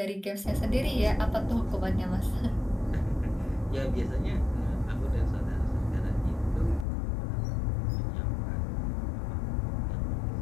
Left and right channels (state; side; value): drops out; right; at 6.9 s